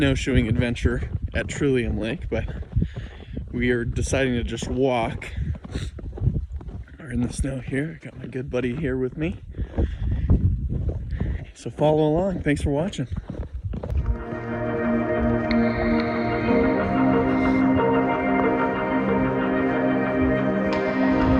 adventure at Trillium Lake, but we are deciding to just walk. We're in the snow here. I got my good buddy here with me. So follow along. Thanks for watching.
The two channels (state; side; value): identical; both; correlation 1.00